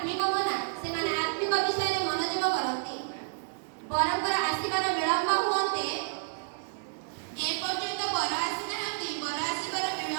ମନା ସେମାନେ ଆତ୍ମିକ ବିଷୟରେ ମନୋଯୋଗ କରନ୍ତି। ବରଙ୍କର ଆସିବାର ବିଳମ୍ବ ହୁଅନ୍ତେ ଏପର୍ଯ୍ୟନ୍ତ ବର ଆସିନାହାନ୍ତି, ବର ଆସିବାର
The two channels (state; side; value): silent; left; digital silence